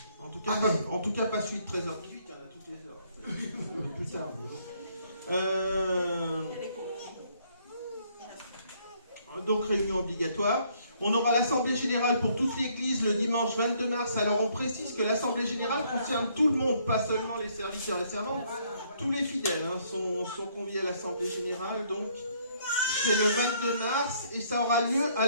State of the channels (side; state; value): both; inverted; correlation -0.66